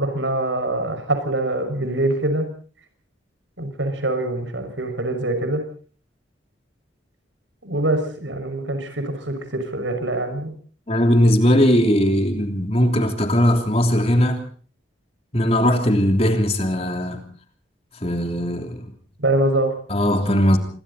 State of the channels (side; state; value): both; normal; correlation 0.61